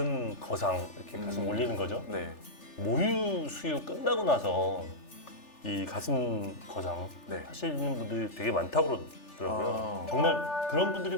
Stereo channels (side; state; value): right; late; 3.4 ms